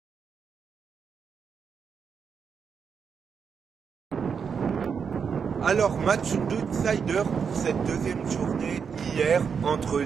Alors, match d'outsider pour cette deuxième journée hier entre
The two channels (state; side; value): quieter; left; 6.4 dB